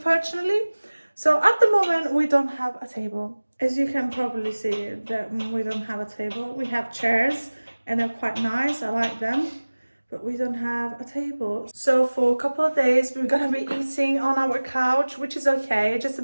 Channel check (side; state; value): both; inverted; correlation -1.00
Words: So at the moment, we don't have a table. As you can probably see, that we don't have a table. We have chairs and they're quite nice. I like them, but we don't have a table. So for a couple of days, we're gonna be eating on our couch, which is okay. Just a